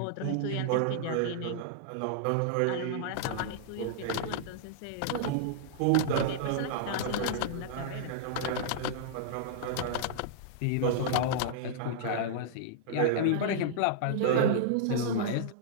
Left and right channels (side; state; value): both; different; correlation -0.02